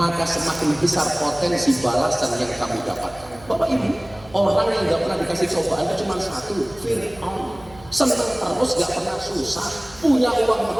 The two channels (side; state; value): right; noise; hum, 23 dB below the sound